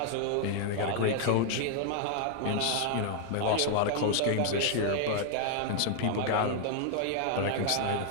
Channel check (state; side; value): different; both; correlation 0.00